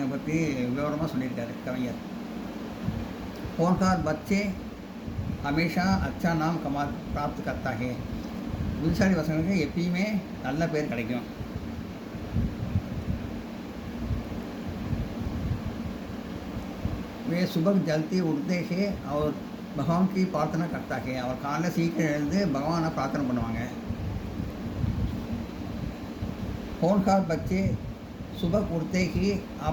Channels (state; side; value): identical; both; correlation 1.00